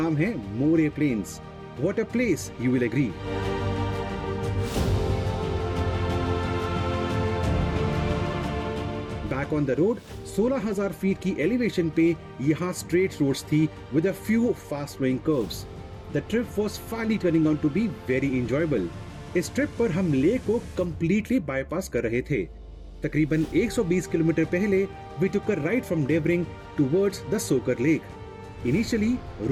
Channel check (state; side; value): identical; both; correlation 1.00